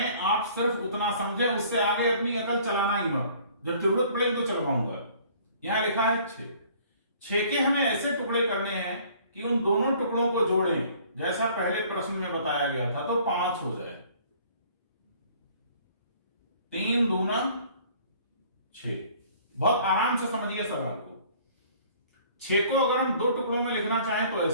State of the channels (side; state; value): both; inverted; correlation -0.55